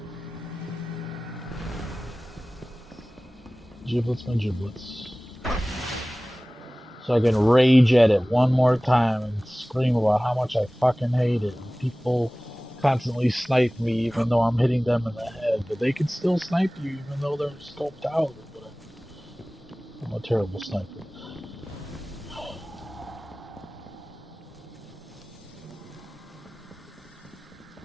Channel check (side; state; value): both; normal; correlation 0.98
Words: Giblets my giblets. So I can rage at it one more time and scream about how much I fucking hate it. And people constantly snipe me even though I'm hitting them in the head. But they can still snipe you even though they're scoped out. But I'm a terrible sniper.